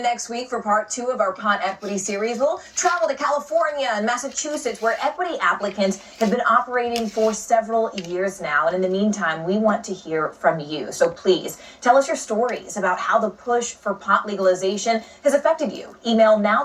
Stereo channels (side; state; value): both; identical; correlation 1.00